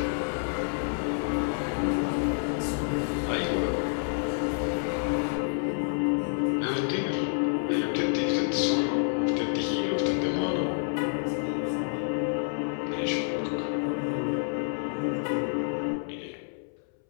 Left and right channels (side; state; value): right; silent; 59 dB below the other